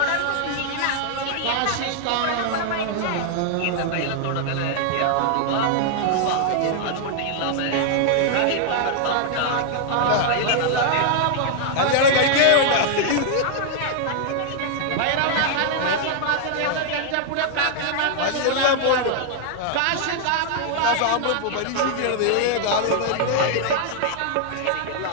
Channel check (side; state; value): both; different; correlation -0.01